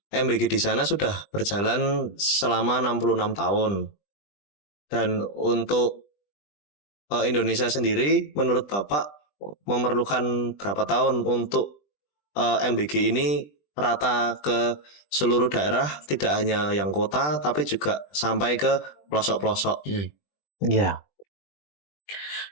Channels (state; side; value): late; right; 20 ms